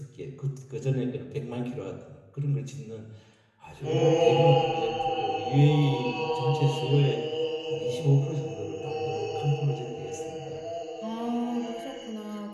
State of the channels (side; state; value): both; identical; correlation 1.00